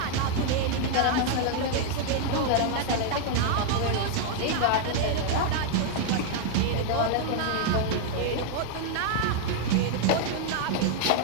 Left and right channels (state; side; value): different; both; correlation 0.00